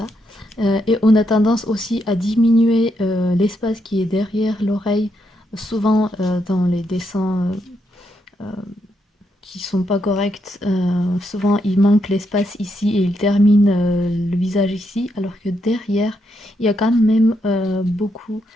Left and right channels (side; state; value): both; normal; correlation 0.79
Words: Et on a tendance aussi à diminuer l'espace qui est derrière l'oreille, souvent dans les dessins qui sont pas corrects. Souvent il manque l'espace ici et il termine le visage ici, alors que derrière il y a quand même beaucoup